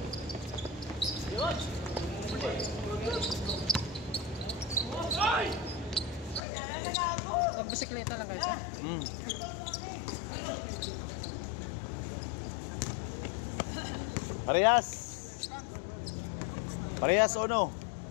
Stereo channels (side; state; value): right; drops out; at 6.4 s